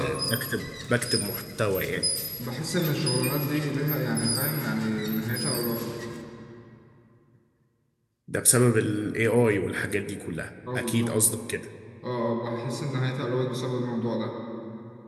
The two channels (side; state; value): both; identical; correlation 1.00